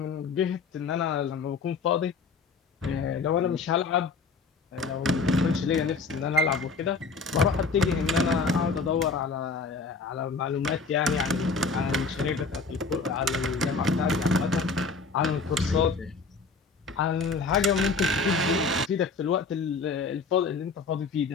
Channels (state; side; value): quieter; right; 4.4 dB